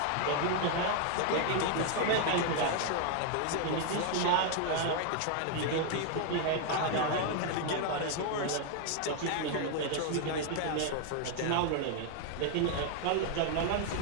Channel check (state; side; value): different; both; correlation 0.00